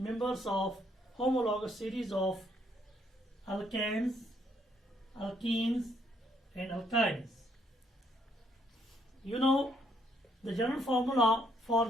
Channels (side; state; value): both; normal; correlation 0.70